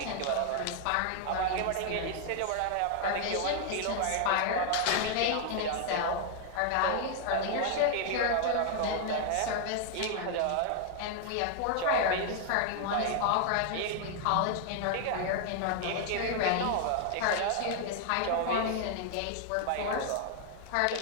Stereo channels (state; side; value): different; both; correlation 0.00